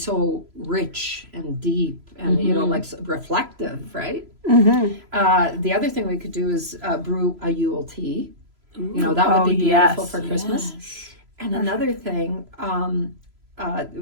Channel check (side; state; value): left; late; 3.0 ms